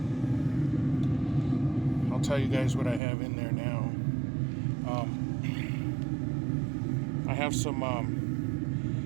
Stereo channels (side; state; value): left; drops out; at 3.0 s